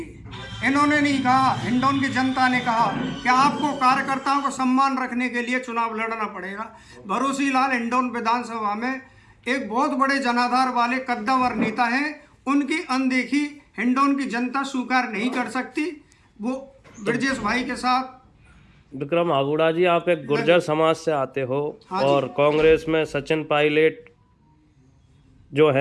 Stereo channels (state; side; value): identical; both; correlation 1.00